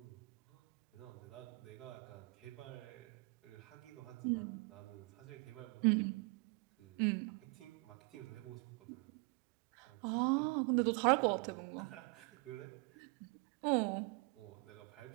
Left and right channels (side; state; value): left; quieter; 29.0 dB